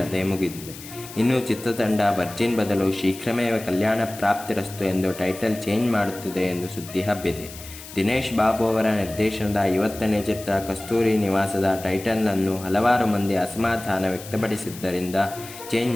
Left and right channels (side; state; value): left; noise; hiss, 15 dB below the sound